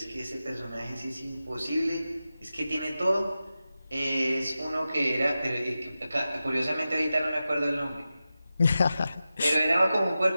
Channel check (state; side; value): inverted; both; correlation -0.93